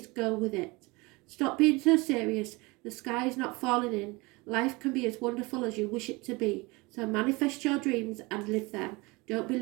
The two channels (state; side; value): quieter; left; 24.9 dB